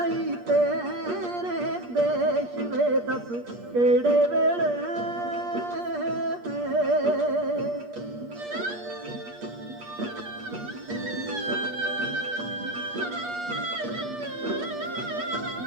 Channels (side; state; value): left; late; 8.4 ms